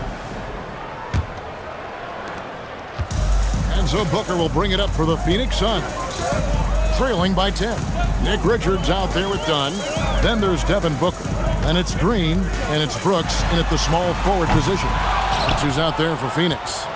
And so Booker will bring it up for the Phoenix Suns. Trailing by 10. Nick Richards out there with Dunn. Then there's Devin Booker. And it's Green, and it's Brooks in at the small forward position. That's who's out there for Phoenix.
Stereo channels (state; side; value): identical; both; correlation 1.00